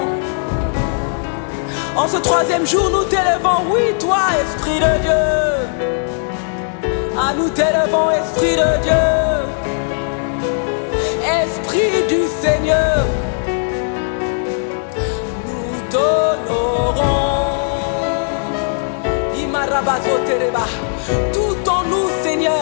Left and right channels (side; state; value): right; silent; digital silence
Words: En ce 3e jour, nous t'élevons. Oui, toi, Esprit de Dieu. Ah, nous t'élevons, Esprit de Dieu. Esprit du Seigneur. Nous t'honorons. Imarabazo tereba. Tout en nous,